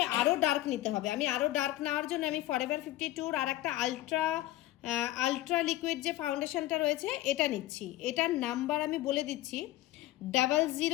আরও ডার্ক নিতে হবে। আমি আরও ডার্ক নেওয়ার জন্য আমি ফরএভার 52 আর একটা আলট্রা লিকুইড যে ফাউন্ডেশনটা রয়েছে এটা নিচ্ছি। এটার নাম্বার আমি বলে দিচ্ছি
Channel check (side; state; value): right; quieter; 15.9 dB